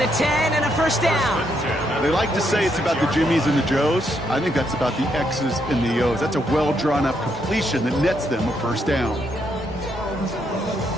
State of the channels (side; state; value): both; normal; correlation 0.76